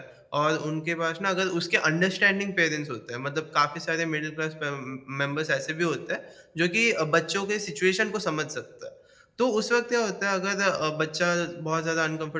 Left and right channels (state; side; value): identical; both; correlation 1.00